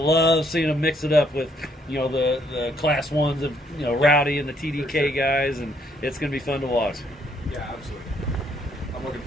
seeing them mix it up with, the Class 1s of, Rowdy and the TDK guys, and it's going to be fun to watch. Yeah, absolutely. I'm looking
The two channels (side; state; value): both; normal; correlation 0.69